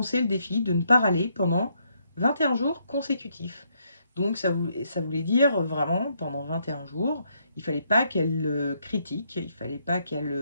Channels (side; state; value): both; inverted; correlation -0.74